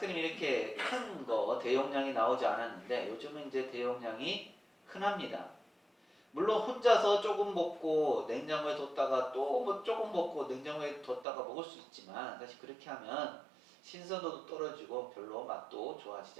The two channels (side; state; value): left; drops out; at 11.2 s